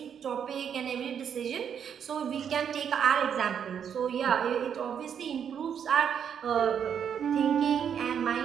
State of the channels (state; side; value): quieter; left; 8.1 dB